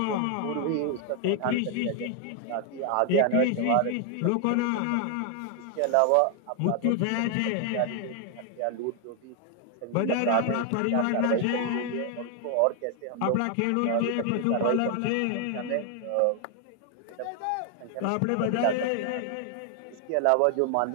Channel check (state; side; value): different; both; correlation 0.00